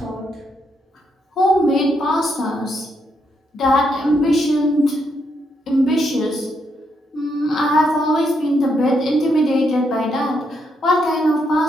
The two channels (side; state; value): both; normal; correlation 0.78